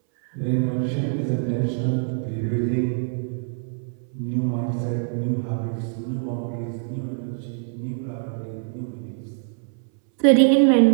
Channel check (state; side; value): silent; left; 62 dB below the other